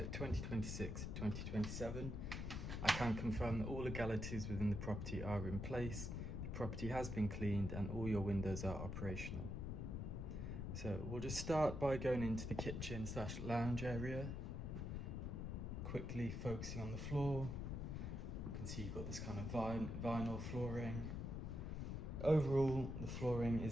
2026-2027. I can confirm that all legalities within the property are in place, the property has been cleaned and all your windows are operational. So we'll just start by going into the kitchen/lounge area, quickly focusing on the floor. You can see you've got this kind of vinyl flooring. Overall, the flooring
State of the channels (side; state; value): left; noise; rumble, 3 dB below the sound